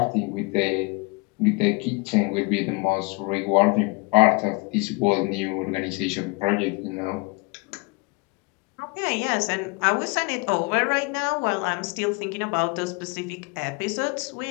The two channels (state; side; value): quieter; right; 28.7 dB